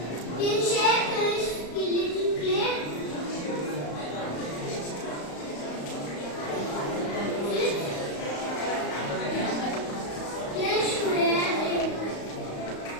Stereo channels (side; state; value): right; late; 34 ms